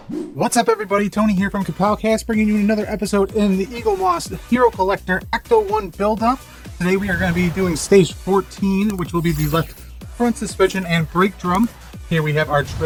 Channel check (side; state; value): both; identical; correlation 1.00